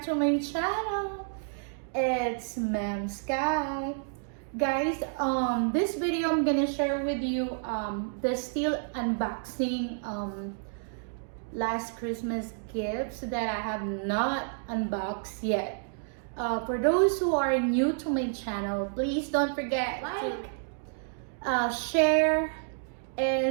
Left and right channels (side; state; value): left; silent; digital silence